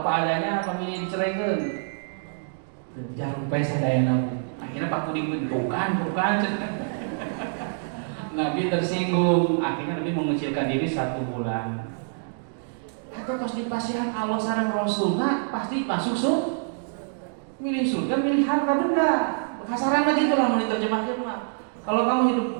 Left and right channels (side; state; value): left; silent; digital silence